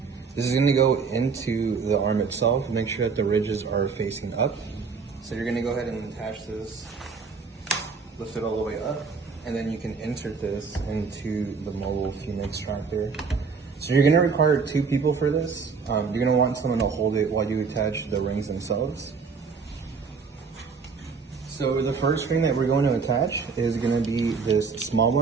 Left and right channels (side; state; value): left; quieter; 5.2 dB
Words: This is going to go into the arm itself. Make sure that the ridges are facing up. So you're going to go ahead and attach this, lift it all the way up, and then you can insert this into the mobile fume extractor. So you're going to require 2 people for this. You're going to want someone to hold it while you attach the rings themselves. So the first ring that we're going to attach is going to be this small